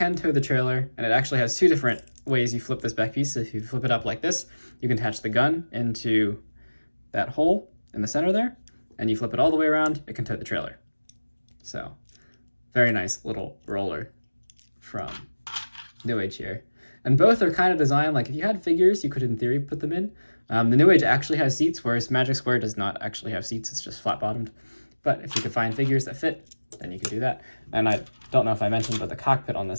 tow the trailer, and it actually has two different ways you flip this back piece. So if you flip it up like this, you can attach the gun into that hole in the center there, and you flip it all the way around, it can tow the trailer. So, very nice little roller from New Age here. And both are kind of designed, like if you had figures, you could in theory put them in. The New Age actually has seats, whereas Magic Square does not actually have seats, it's just flat bottomed. But if you could find figures that fit, then you can do that. And I don't know if I mentioned, but the cockpit on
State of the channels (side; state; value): both; inverted; correlation -1.00